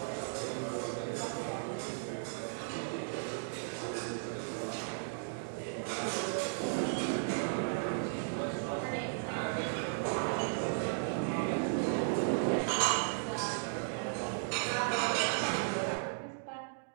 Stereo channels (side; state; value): left; silent; digital silence